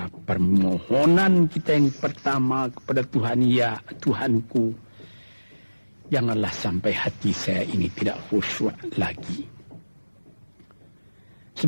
permohonan kita yang pertama kepada Tuhan, ya Tuhanku, janganlah sampai hati saya ini tidak khusyuk lagi.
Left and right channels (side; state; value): both; inverted; correlation -1.00